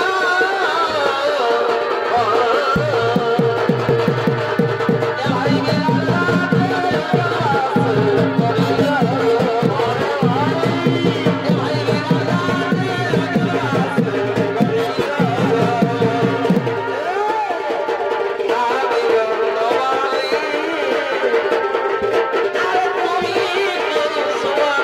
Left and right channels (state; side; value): identical; both; correlation 1.00